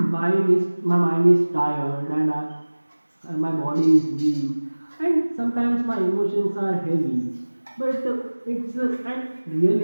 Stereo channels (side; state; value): both; inverted; correlation -1.00